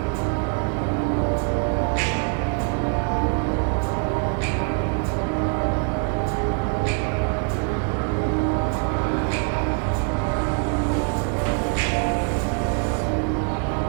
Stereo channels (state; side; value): quieter; left; 38.5 dB